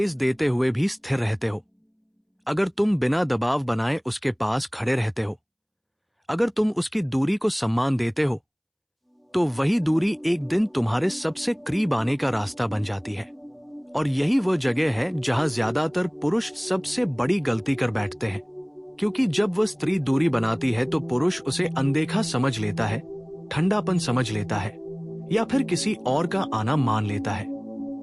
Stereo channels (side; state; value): both; identical; correlation 1.00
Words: देते हुए भी स्थिर रहते हो, अगर तुम बिना दबाव बनाए उसके पास खड़े रहते हो, अगर तुम उसकी दूरी को सम्मान देते हो, तो वही दूरी एक दिन तुम्हारे सबसे करीब आने का रास्ता बन जाती है। और यही वो जगह है जहां ज्यादातर पुरुष सबसे बड़ी गलती कर बैठते हैं, क्योंकि जब वह स्त्री दूरी बनाती है तो पुरुष उसे अनदेखा समझ लेता है, ठंडापन समझ लेता है या फिर किसी और का आना मान लेता है।